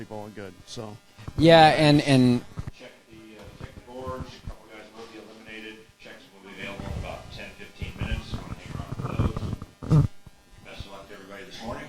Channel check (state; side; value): identical; both; correlation 1.00